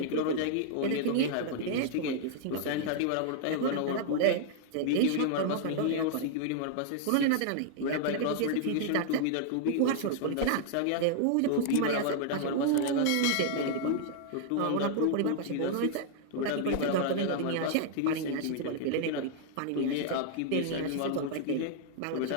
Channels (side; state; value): both; different; correlation -0.01